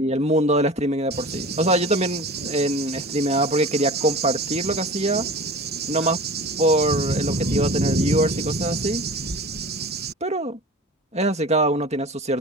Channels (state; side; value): normal; both; correlation 0.36